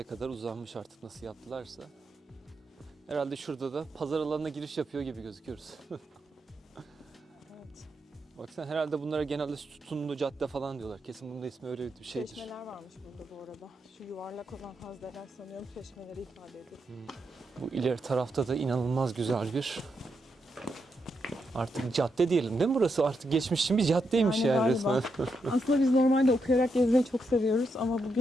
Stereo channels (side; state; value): both; normal; correlation 0.82